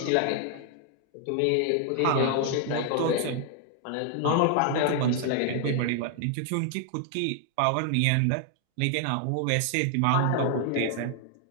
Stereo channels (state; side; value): different; both; correlation 0.00